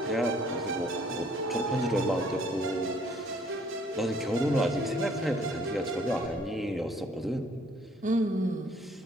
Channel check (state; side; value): normal; both; correlation 0.61